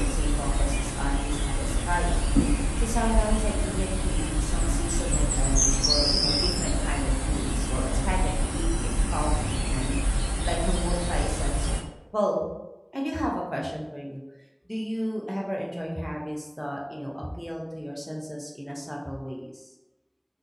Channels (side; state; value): both; identical; correlation 1.00